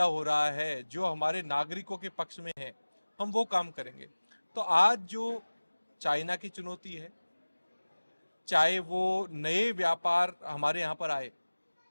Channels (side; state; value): both; inverted; correlation -1.00